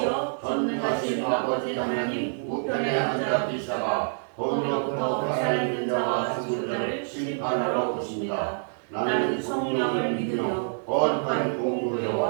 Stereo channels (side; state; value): left; silent; digital silence